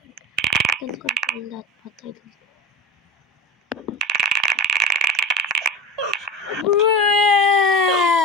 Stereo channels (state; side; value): normal; both; correlation 0.31